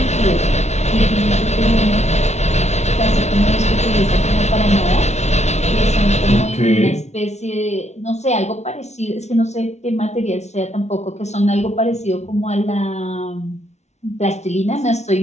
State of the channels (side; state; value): right; late; 0.32 ms